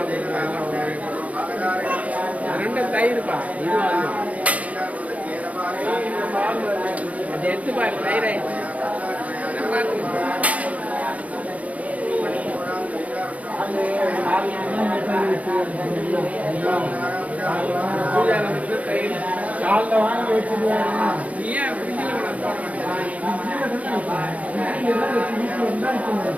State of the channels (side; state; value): left; late; 0.069 ms